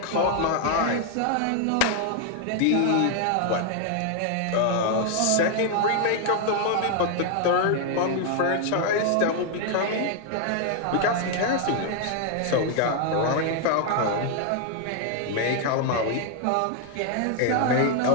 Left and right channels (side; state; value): both; different; correlation 0.00